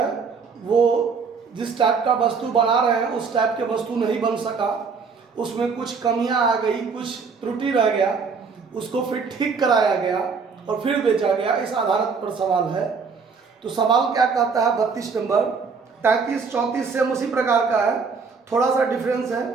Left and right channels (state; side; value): quieter; left; 5.2 dB